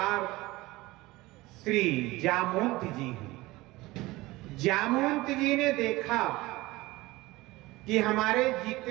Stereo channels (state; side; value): quieter; left; 20.0 dB